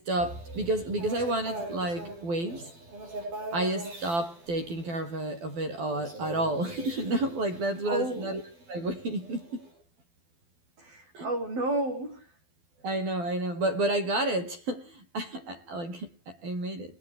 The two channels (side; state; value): left; late; 12 ms